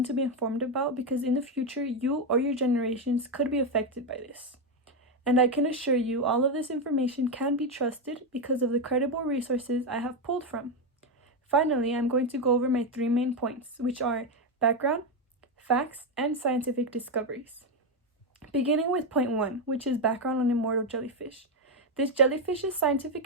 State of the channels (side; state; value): both; normal; correlation 0.07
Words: to be informed about because in the future, you or your generations could be affected by this. And I can assure you all of this information can be trusted because of the credible resources I have pulled from. Finally, I'm going to go over my 3 main points, which are background, facts, and scientific discoveries. Beginning with point 1, which is background on immortal jellyfish. This jellyfish's